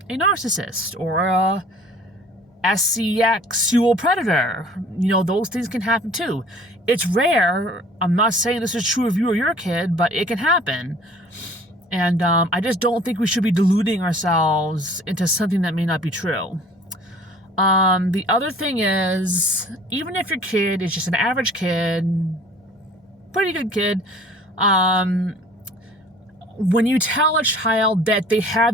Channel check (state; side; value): normal; both; correlation 0.50